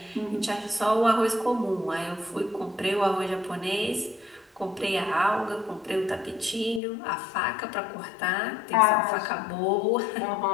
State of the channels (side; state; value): right; drops out; at 6.8 s